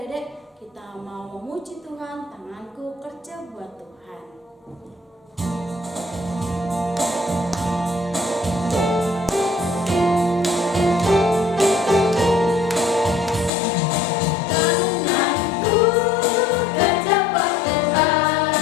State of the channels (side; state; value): right; drops out; at 13.5 s